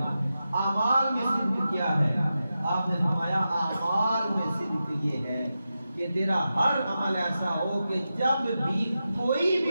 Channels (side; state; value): both; inverted; correlation -0.90